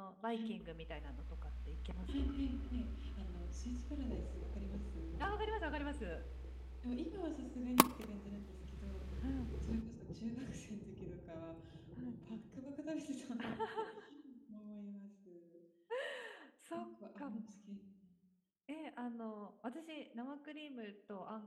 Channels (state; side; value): identical; both; correlation 1.00